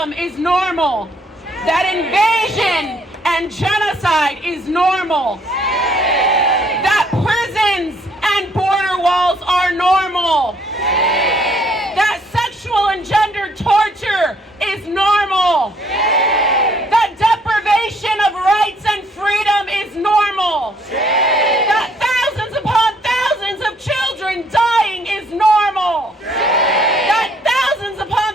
is normal, that invasion and genocide is normal, that prisons and border walls are normal, that sexual and gender torture is normal, that deprivation of rights and freedom is normal, that thousands upon thousands of children dying is normal, that thousands upon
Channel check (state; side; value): normal; both; correlation 0.65